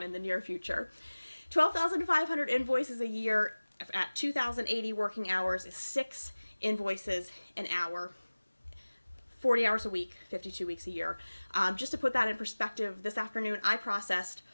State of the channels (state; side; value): inverted; both; correlation -1.00